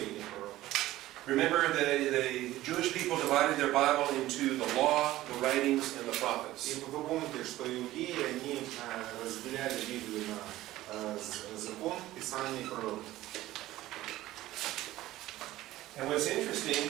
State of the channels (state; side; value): quieter; left; 15.9 dB